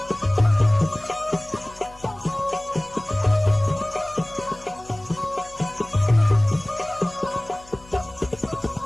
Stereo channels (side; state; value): left; noise; hum, 23 dB below the sound